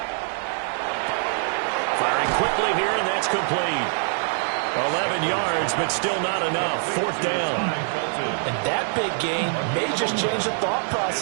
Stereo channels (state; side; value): silent; left; 59 dB below the other